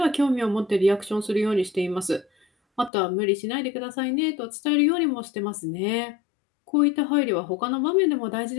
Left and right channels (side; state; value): right; drops out; at 2.9 s